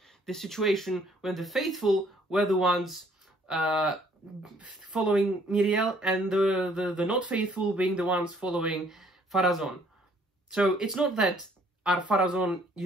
the situation when the faithful were the ones following Miriel, and the not faithful being the ones following Pharazôn. So it's not that Ar-Pharazôn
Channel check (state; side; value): normal; both; correlation 0.62